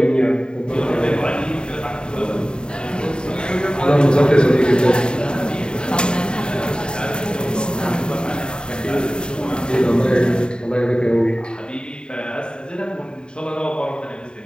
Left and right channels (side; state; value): right; late; 0.049 ms